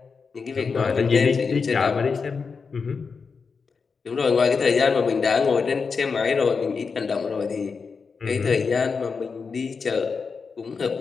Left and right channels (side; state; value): right; quieter; 5.2 dB